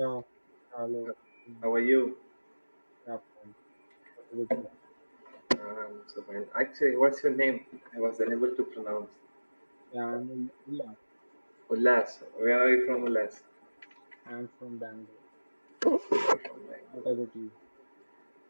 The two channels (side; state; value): both; inverted; correlation -1.00